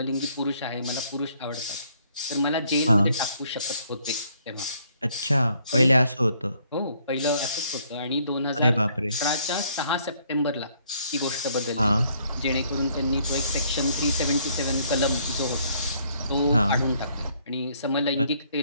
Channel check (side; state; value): both; inverted; correlation -0.66